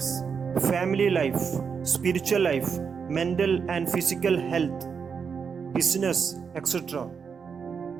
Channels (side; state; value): left; quieter; 6.2 dB